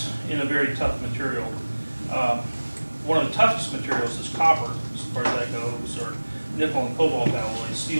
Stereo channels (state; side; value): inverted; both; correlation -1.00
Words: in a very tough material. One of the toughest materials is copper, as far as that goes, or nickel and cobalt alloys.